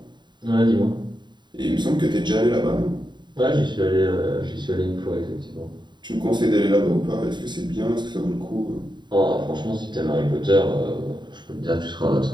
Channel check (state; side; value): late; left; 0.22 ms